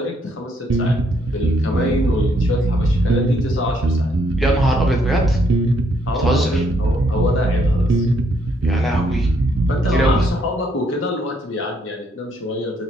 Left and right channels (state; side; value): normal; both; correlation 0.71